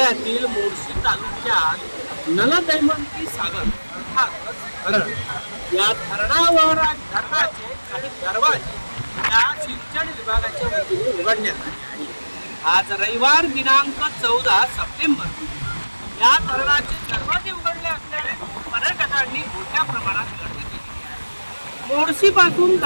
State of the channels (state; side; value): inverted; both; correlation -1.00